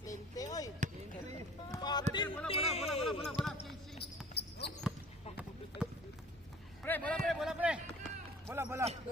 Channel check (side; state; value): both; normal; correlation 0.47